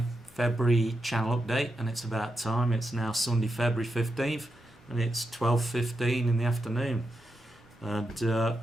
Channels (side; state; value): both; normal; correlation 0.86